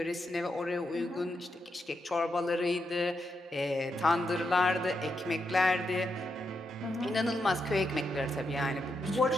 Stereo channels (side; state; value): both; normal; correlation 0.83